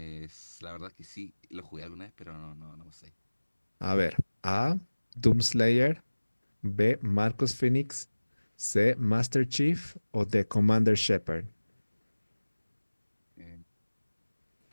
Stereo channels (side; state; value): both; inverted; correlation -1.00